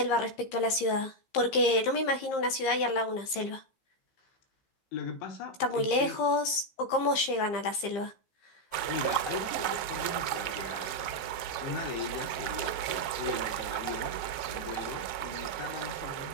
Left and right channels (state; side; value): late; right; 15 ms